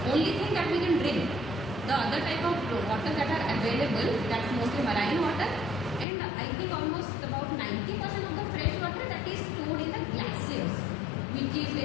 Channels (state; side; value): drops out; right; at 6.1 s